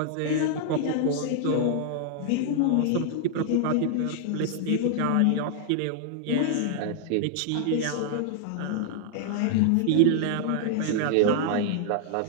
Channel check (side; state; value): both; different; correlation -0.01